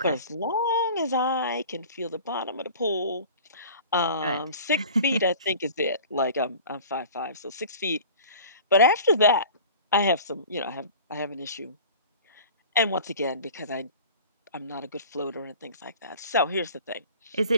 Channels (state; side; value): inverted; both; correlation -0.42